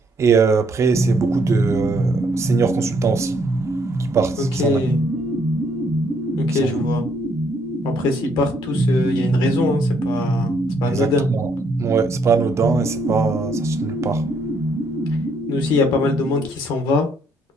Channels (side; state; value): both; normal; correlation 0.70